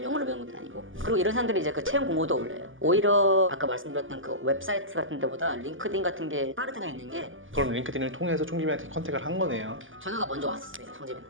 영어를 배우는 것도 아니고. 그리고 이런 사람들이 이제 그 채용 공고도 올려요. 오히려 아까 말씀드렸던 그 웹사이트 같은 데보다 링크드인 같은 게 빠르다가 있는 게, 그럼 링크드인을 통해서 총집한테 컨택을 한 거네요. 전화가 먼저 왔었어요,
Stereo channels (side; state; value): left; late; 0.58 ms